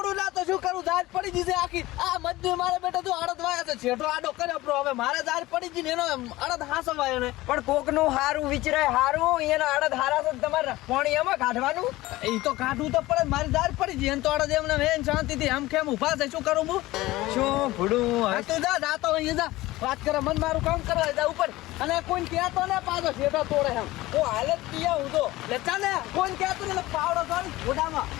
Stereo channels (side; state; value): right; quieter; 18.3 dB